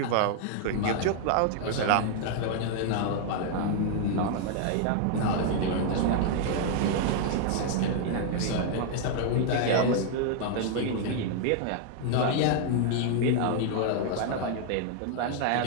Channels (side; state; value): both; different; correlation 0.00